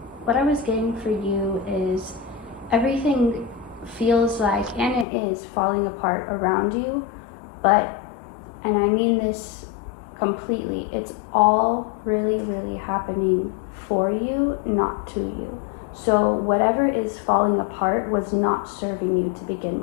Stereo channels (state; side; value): drops out; right; at 5.1 s